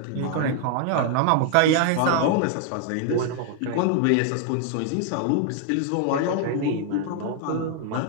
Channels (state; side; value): different; both; correlation 0.00